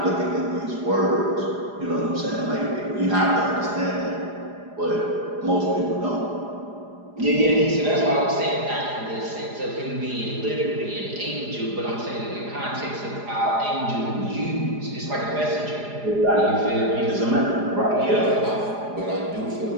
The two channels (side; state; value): left; late; 4.9 ms